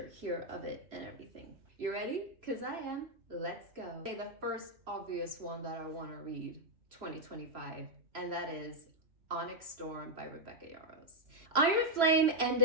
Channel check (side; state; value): left; late; 3.0 ms